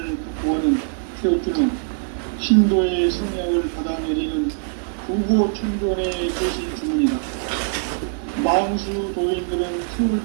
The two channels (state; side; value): silent; left; 64 dB below the other